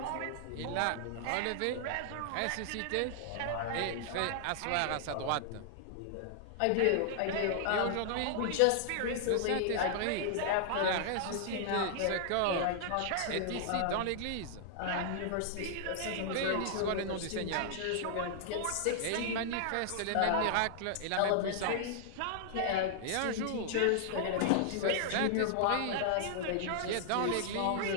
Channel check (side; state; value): both; different; correlation -0.01